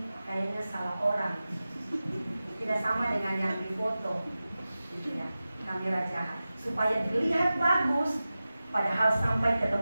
kayaknya salah orang, tidak sama dengan yang di foto, gitu ya, kamera jahat, supaya dilihat bagus, padahal sampai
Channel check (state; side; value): inverted; both; correlation -0.95